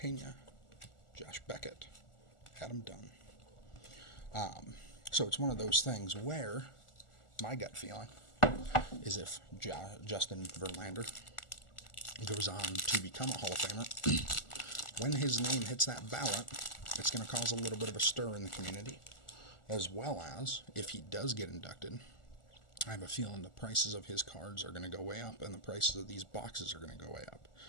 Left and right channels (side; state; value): right; late; 1.4 ms